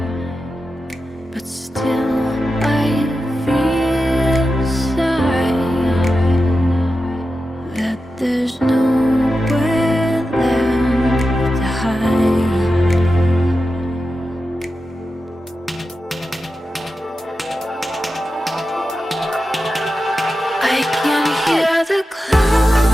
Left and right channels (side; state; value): both; normal; correlation 0.91